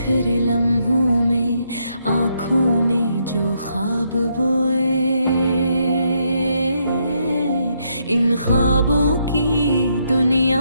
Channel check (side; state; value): both; inverted; correlation -0.76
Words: लम्हों में आँखों ने जो ख्वाब बोए, इन ख्वाबों की दुनिया